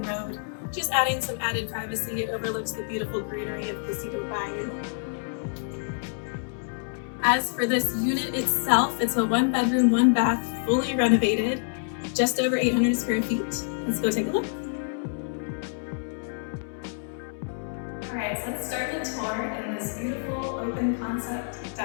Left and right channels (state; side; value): silent; right; 60 dB below the other